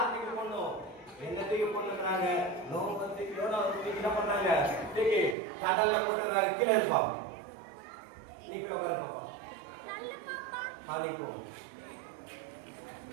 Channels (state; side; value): drops out; left; at 5.4 s